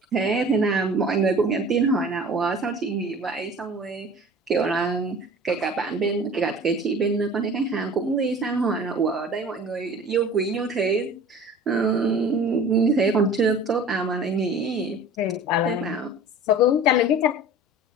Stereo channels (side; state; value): both; normal; correlation 0.42